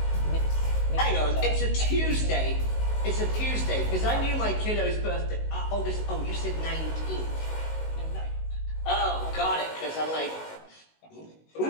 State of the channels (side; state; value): right; late; 19 ms